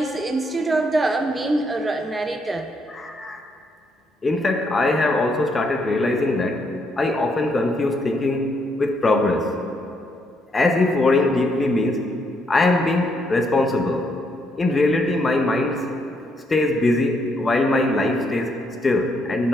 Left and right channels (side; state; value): both; normal; correlation 0.75